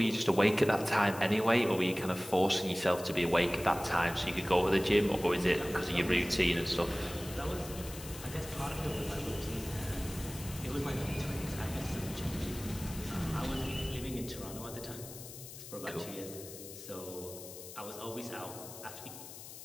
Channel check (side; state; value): left; noise; hiss, 13 dB below the sound